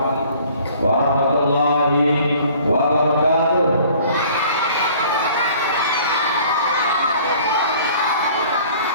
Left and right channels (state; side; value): inverted; both; correlation -0.52